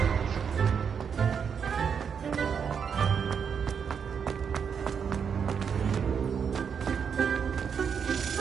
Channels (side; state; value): left; quieter; 6.9 dB